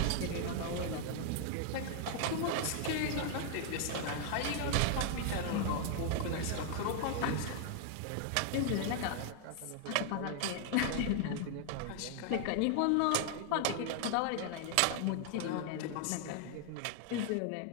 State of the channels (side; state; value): both; different; correlation 0.00